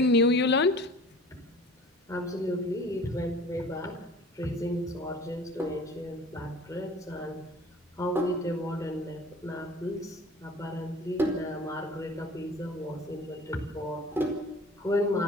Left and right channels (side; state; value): both; normal; correlation 0.44